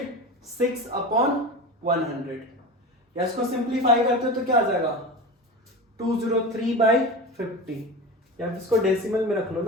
अपॉन 100, या इसको सिंप्लीफाई करते हो तो क्या आ जाएगा 203/50, या इसको डेसिमल में रख लो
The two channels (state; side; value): normal; both; correlation 0.27